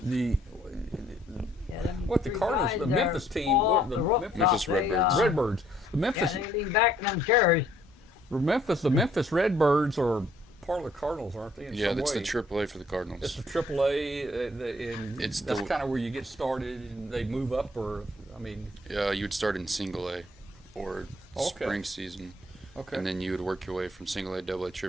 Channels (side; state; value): both; normal; correlation 0.63